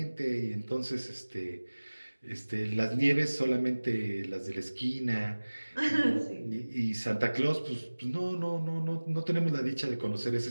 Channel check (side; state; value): both; inverted; correlation -1.00